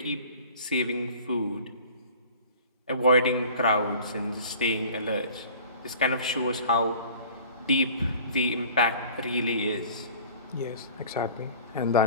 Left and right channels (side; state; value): both; inverted; correlation -0.46